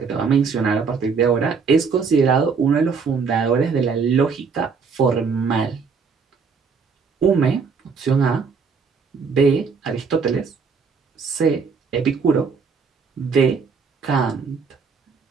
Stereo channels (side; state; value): left; quieter; 5.4 dB